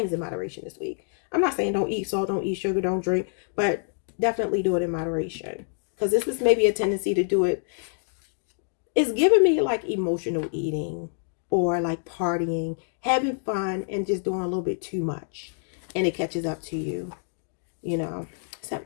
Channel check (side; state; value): right; silent; digital silence